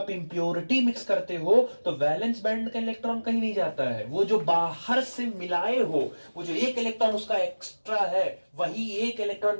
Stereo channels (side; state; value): both; inverted; correlation -1.00